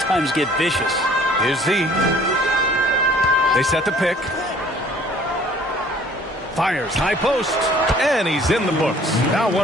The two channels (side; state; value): both; normal; correlation 0.54